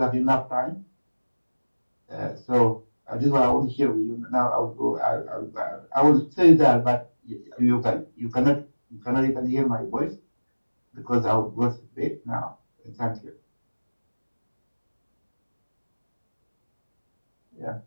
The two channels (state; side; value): inverted; both; correlation -1.00